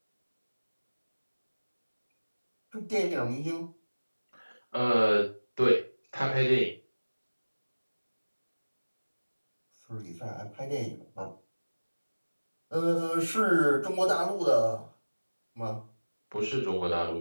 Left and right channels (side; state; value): both; inverted; correlation -1.00